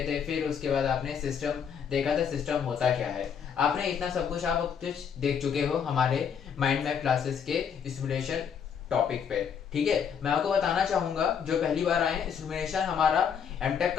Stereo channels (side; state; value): right; quieter; 7.3 dB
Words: थे। फिर उसके बाद आपने सिस्टम देखा था, सिस्टम होता क्या है। आपने इतना सब कुछ आप कुछ देख चुके हो हमारे माइंड मैप क्लासेस के सिमुलेशन टॉपिक पे। ठीक है, मैं आपको बताना चाहूंगा जो पहली बार आए, सिमुलेशन हमारा एमटेक